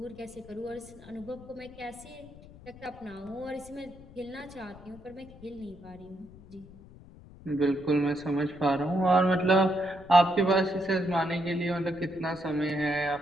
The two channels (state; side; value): noise; left; rumble, 20 dB below the sound